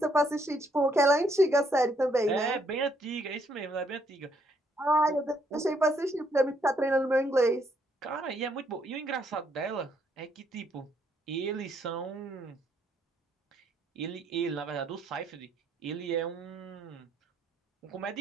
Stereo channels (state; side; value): normal; both; correlation 0.71